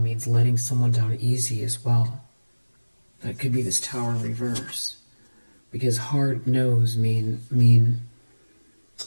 letting someone down easy as well. That could be this Tower reverse. because hard no's mean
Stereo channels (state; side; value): inverted; both; correlation -1.00